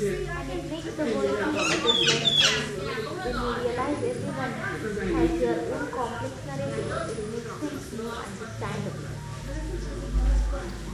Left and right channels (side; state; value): both; identical; correlation 1.00